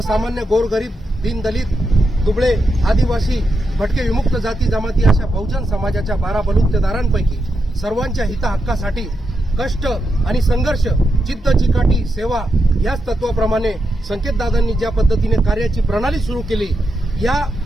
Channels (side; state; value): both; normal; correlation 0.85